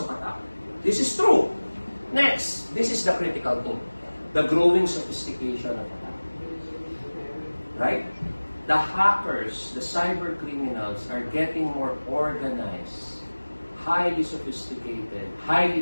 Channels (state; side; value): inverted; both; correlation -1.00